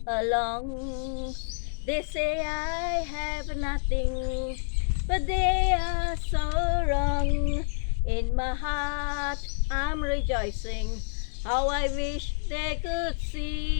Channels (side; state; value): right; silent; digital silence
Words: along, they say I have nothing, but they are so wrong. In my heart I'm rejoicing, how I wish they could